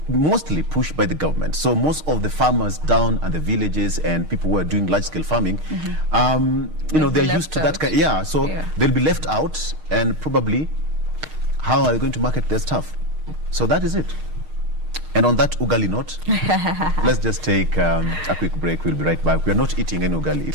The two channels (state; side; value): late; left; 6.5 ms